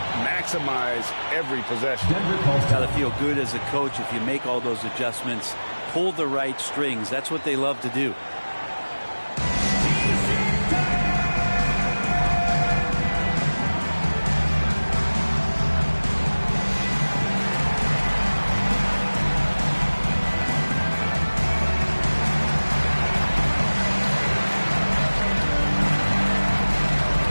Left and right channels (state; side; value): inverted; both; correlation -1.00